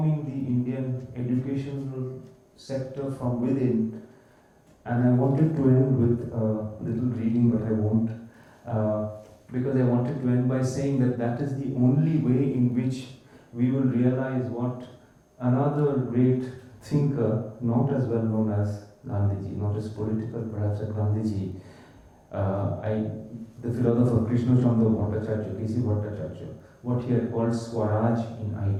the Indian educational sector from within. And I wanted to end with a little reading, but I won't, because I wanted to end by saying that that is the only way in which we will realize what another great thinker, not as well known as Gandhiji, not as political perhaps as Gandhiji, the philosopher Krishna Chandra Bhattacharya, K.C. Bhattacharya, what he had called Swaraj in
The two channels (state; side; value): identical; both; correlation 1.00